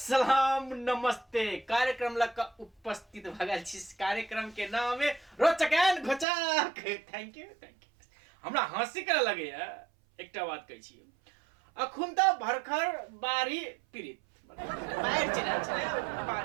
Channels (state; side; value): drops out; left; at 6.2 s